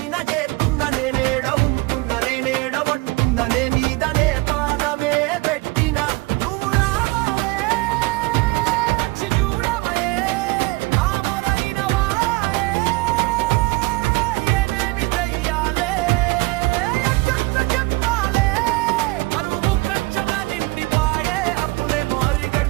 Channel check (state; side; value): quieter; left; 23.5 dB